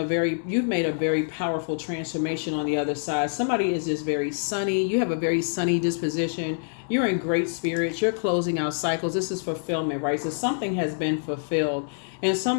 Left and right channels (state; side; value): silent; right; digital silence